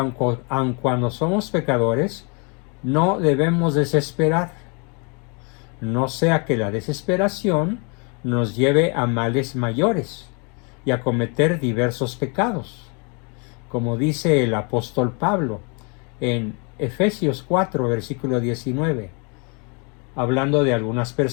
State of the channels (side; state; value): right; quieter; 34.3 dB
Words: cuando somos pecadores, no debemos desesperar, no sea que la desesperación nos lleve a males mayores y a cometer diversos pecados, como dice el apóstol Pablo en Efesios 4, versículo 19. hablando de algunas